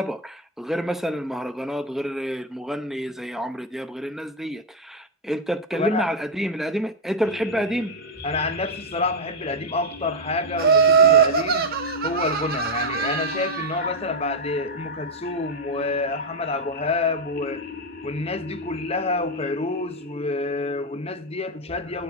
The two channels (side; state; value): both; normal; correlation 0.03